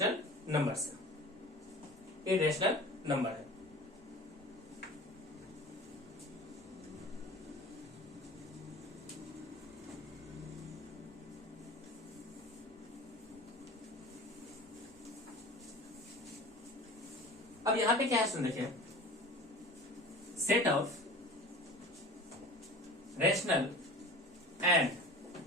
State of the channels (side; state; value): both; normal; correlation 0.39